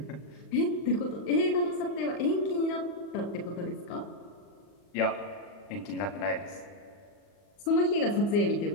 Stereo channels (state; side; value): late; right; 40 ms